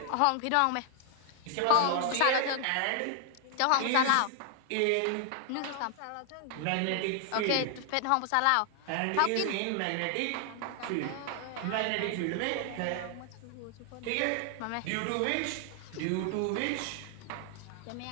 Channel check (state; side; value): different; both; correlation 0.00